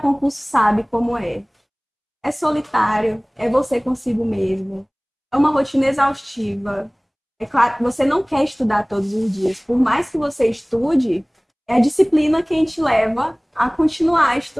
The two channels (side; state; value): both; identical; correlation 1.00